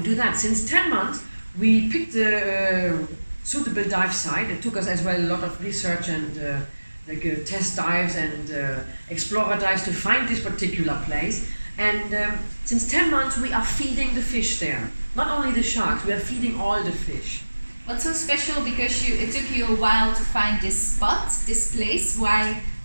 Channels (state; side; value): inverted; both; correlation -1.00